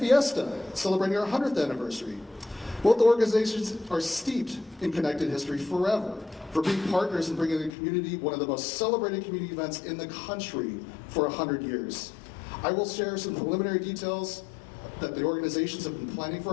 celebrating our 100th anniversary. Both organizations are steeped in connected history forever for being partners in bringing the community one of the most celebrated community events in the country for 100 years. I will share some preliminary details that the organizations have been planning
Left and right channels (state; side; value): drops out; right; at 7.7 s